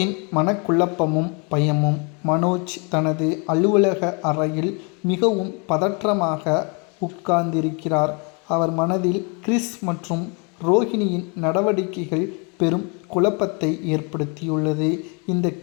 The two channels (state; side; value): quieter; right; 33.8 dB